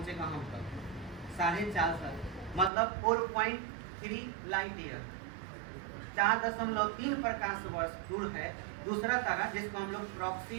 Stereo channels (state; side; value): drops out; left; at 2.7 s